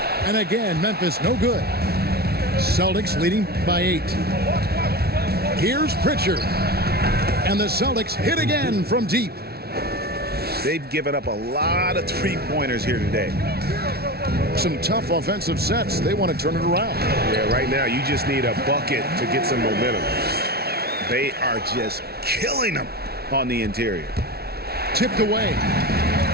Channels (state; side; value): late; left; 0.45 ms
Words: And again, Memphis no good. Celtics leading by 8. Here's Pritchard. And the Celtics hit again from deep. They've given up a lot of three-pointers here today. Some tough offensive sets. They want to turn it around. Yeah, right now you just need a bucket to get some momentum. They are just killing them on the interior. Tipped away.